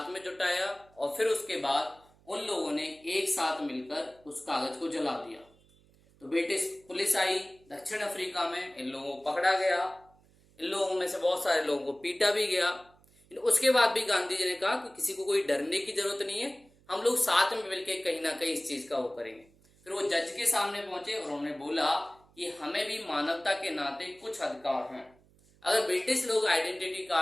में जुटाया और फिर उसके बाद उन लोगों ने एक साथ मिलकर उस कागज को जला दिया। तो ब्रिटिश पुलिस आई दक्षिण अफ्रीका में, इन लोगों को पकड़ा गया, इन लोगों में से बहुत सारे लोगों को पीटा भी गया। उसके बाद भी गांधी जी ने कहा कि किसी को कोई डरने की जरूरत नहीं है, हम लोग साथ में मिलकर कहीं ना कहीं इस चीज का वो करेंगे। फिर वो जज के सामने पहुंचे और उन्होंने बोला कि हमें भी मानवता के नाते कुछ अधिकार हैं। अगर ब्रिटिश लोग आइडेंटिटी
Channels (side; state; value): right; noise; hum, 30 dB below the sound